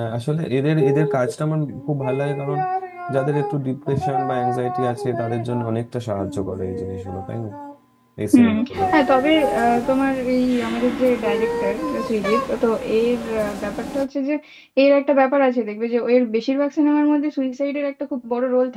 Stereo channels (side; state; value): both; identical; correlation 1.00